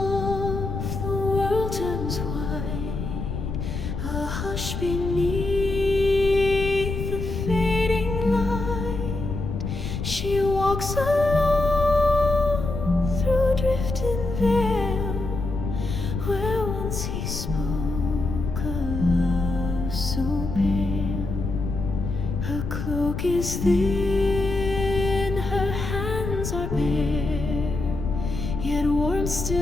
the world turns white, a hush beneath the fading light. She walks alone through drifting vale, where once he spoke a love so pale. Her cloak is thin, her hands are bare, yet warmth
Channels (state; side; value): noise; left; rumble, 4 dB below the sound